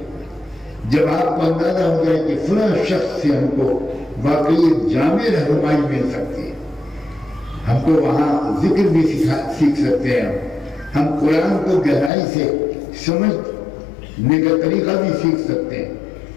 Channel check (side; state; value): right; drops out; at 12.1 s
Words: جب آپ کو اندازہ ہو جائے کہ فلاں شخص سے ہم کو واقعی جامع رہنمائی مل سکتی ہے، ہم کو وہاں ذکر بھی سیکھ سکتے ہیں، ہم قرآن کو گہرائی سے سمجھنے کا طریقہ بھی سیکھ سکتے ہیں،